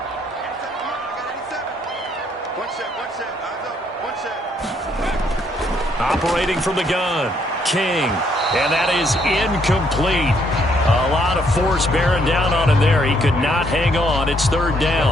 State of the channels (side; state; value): both; normal; correlation 0.70